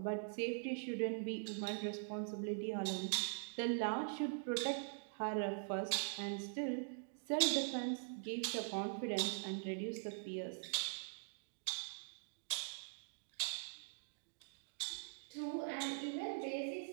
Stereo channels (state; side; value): silent; left; digital silence